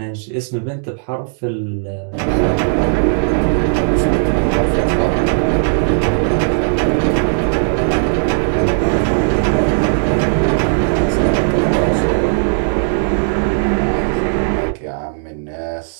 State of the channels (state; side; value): silent; left; digital silence